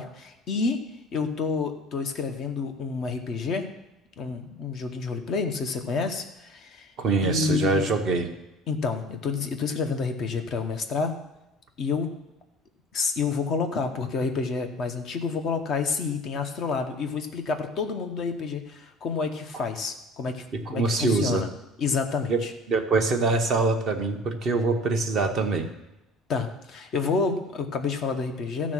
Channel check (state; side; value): normal; both; correlation 0.42